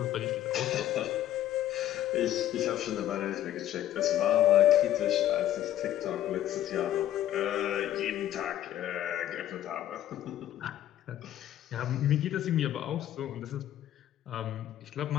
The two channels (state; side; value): quieter; right; 12.4 dB